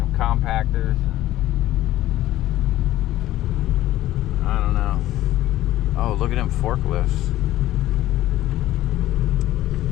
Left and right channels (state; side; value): quieter; right; 14.7 dB